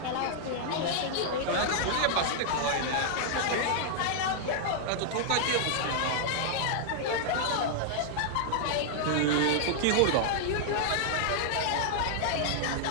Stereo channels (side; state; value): both; different; correlation -0.01